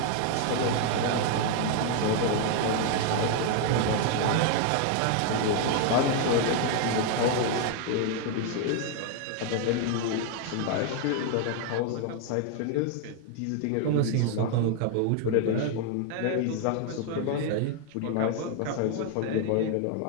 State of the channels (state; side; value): different; both; correlation 0.00